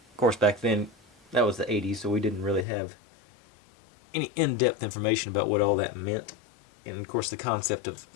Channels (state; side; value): drops out; right; at 2.7 s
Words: course back then that was the 80s, so we didn't really have any in-depth information about what all that meant. And of course the concept of